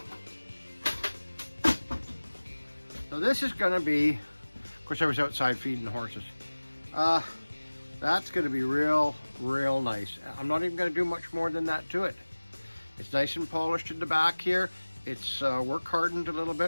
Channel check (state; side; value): inverted; both; correlation -1.00